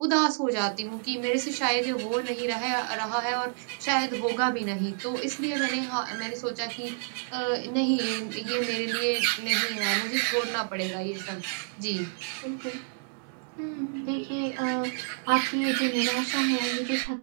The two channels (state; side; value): silent; left; 59 dB below the other